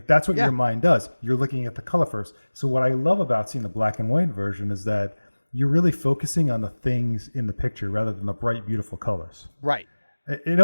that's what your mind does. You're looking at the color first. So what I love about seeing the black and white version is that you're really focusing on the things in the picture rather than the bright, beautiful colors. Right. It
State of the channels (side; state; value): both; inverted; correlation -1.00